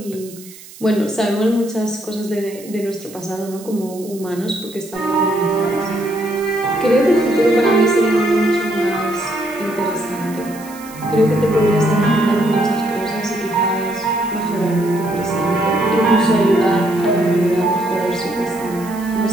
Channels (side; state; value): right; noise; hiss, 19 dB below the sound